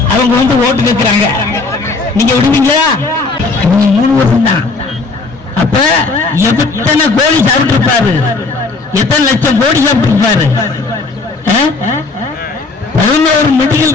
அவங்க ஓட்டு கேட்கிறாங்க. நீங்க விடுவீங்களா? 3 வருஷம் தான். அப்ப எத்தனை கோடி சாப்பிட்டு இருப்பாரு, எத்தனை லட்சம் கோடி சாப்பிட்டு இருப்பாரு. 11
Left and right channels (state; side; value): quieter; right; 3.9 dB